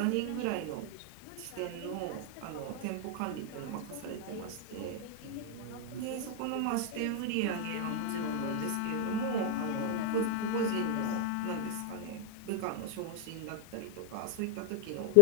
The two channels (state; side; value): different; both; correlation 0.00